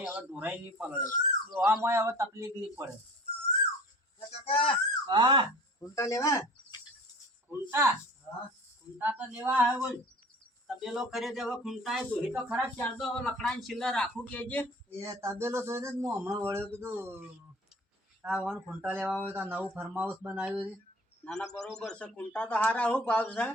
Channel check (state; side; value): normal; both; correlation 0.44